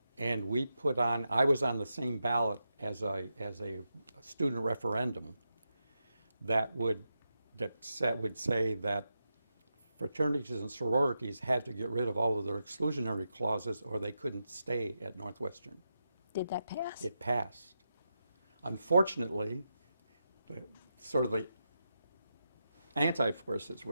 And we put on, I was on the same ballot as a student referendum that would say that fraternities and sororities had to get rid of all of their exclusionary clauses or they couldn't stay at Northwestern. Did that pass? It passed. Unfortunately, the anti-forces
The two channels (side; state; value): both; inverted; correlation -0.87